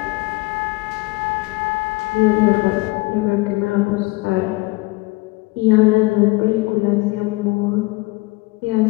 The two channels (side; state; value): right; quieter; 22.9 dB